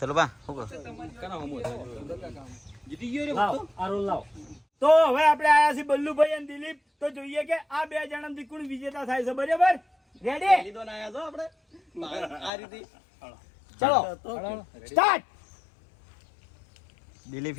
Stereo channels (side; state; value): right; drops out; at 12.5 s